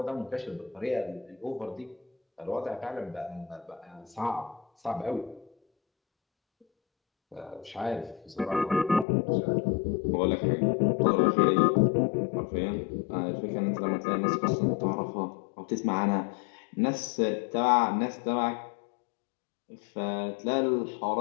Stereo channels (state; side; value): drops out; right; at 9.1 s